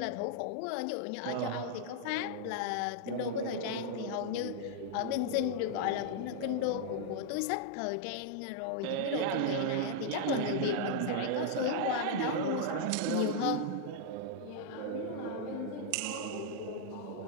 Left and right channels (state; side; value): different; both; correlation -0.01